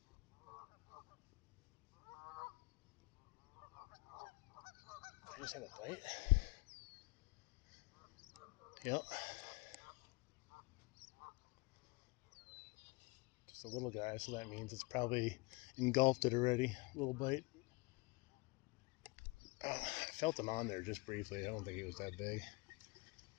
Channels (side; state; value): right; quieter; 26.2 dB